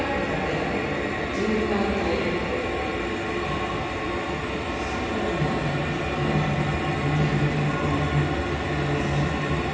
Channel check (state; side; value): identical; both; correlation 1.00